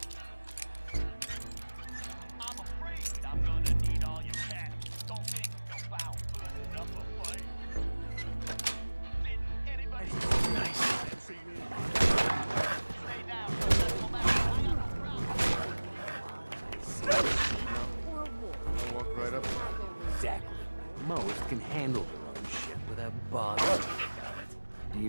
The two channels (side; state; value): both; inverted; correlation -1.00